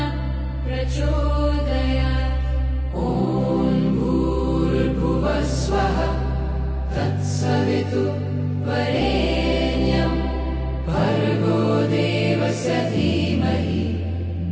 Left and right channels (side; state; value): both; identical; correlation 1.00